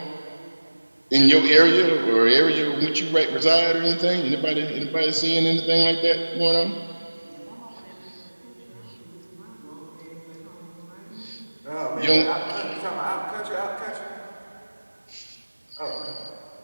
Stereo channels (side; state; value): both; inverted; correlation -1.00